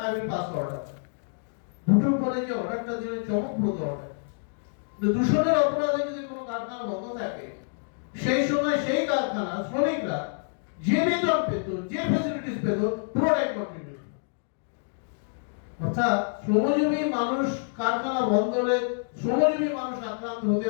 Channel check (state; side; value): silent; right; digital silence